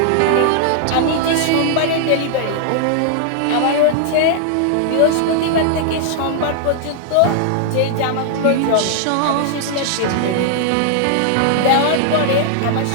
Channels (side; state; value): both; different; correlation 0.00